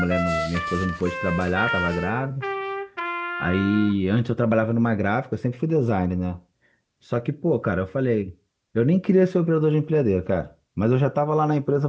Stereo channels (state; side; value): identical; both; correlation 1.00